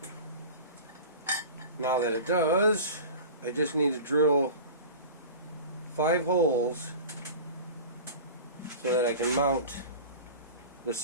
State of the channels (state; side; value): inverted; both; correlation -0.36